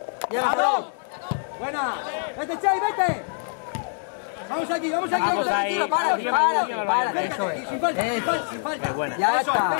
Llega, Aarón. Buena. Vete, Chay, vete. Vamos aquí. Vamos ahí. Para, Acércate, eso es. sin falta. Qué buena. Ya Eso, está.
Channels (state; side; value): silent; right; digital silence